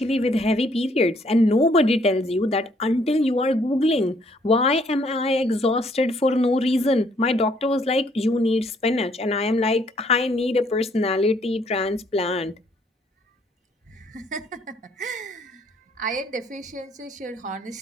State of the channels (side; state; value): both; normal; correlation 0.66